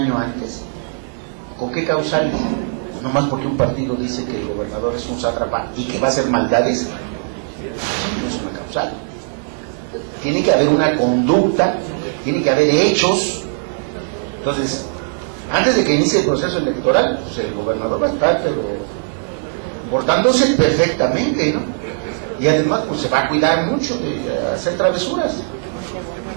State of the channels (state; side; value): silent; left; digital silence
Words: antes. ¿Con qué causales? Nomás porque un partido dice que el gobernador es un sátrapa y que va a hacer maldades. Eso no es una causal. Tiene que haber una conducta, tiene que haber hechos. Entonces, antes de que inicie el proceso electoral, pues el gobernador va a estar portándose perfectamente, ¿no? Y además pues se va a cuidar mucho de hacer travesuras.